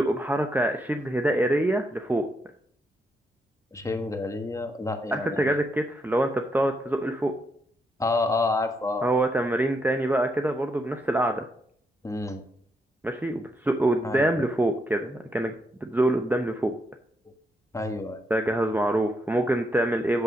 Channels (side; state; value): both; normal; correlation 0.78